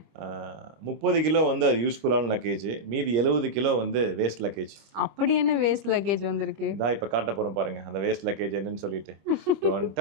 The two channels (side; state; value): left; late; 25 ms